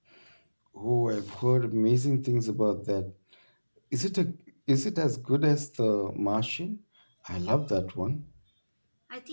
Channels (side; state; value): both; inverted; correlation -1.00